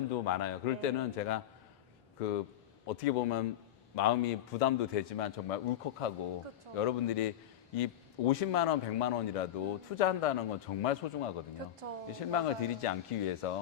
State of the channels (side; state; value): right; quieter; 11.6 dB